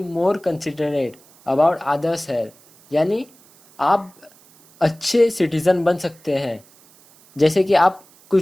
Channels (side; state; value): right; noise; hiss, 28 dB below the sound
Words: more considerate about others' health. यानी आप अच्छे citizen बन सकते हैं। जैसे कि